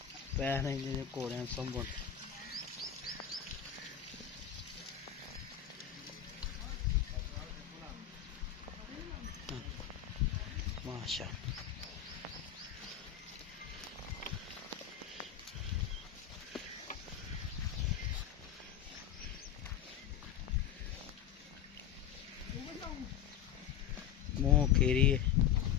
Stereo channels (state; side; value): quieter; right; 9.6 dB